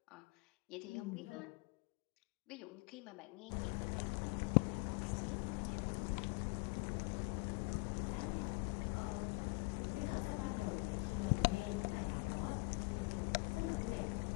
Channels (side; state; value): right; quieter; 29.5 dB